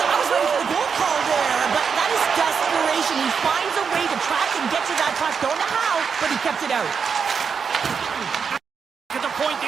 ready for the goal call there, but that is desperation. He finds a way to track and get to that puck. Don't know how, but he kept it out. At the point,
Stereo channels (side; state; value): left; quieter; 6.2 dB